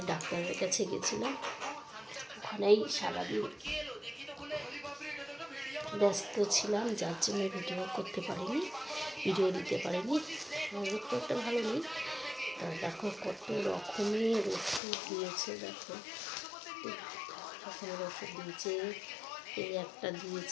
ডাক্তারের কাছে গেছিলাম। ওখানেই সারাদিন ব্যস্ত ছিলাম, যার জন্য ভিডিও করতে পারিনি, ভিডিও দিতে পারিনি। শরীর খুব একটা ভালো নেই। দেখো কত রকমের ওষুধ দিয়েছে, দেখো রকমের ওষুধ দিয়েছে। এই একটা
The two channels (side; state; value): right; drops out; at 14.8 s